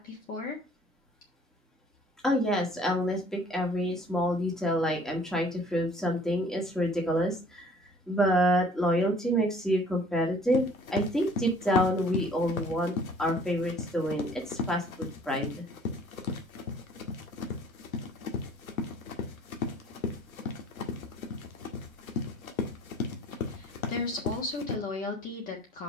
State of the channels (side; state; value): both; normal; correlation 0.54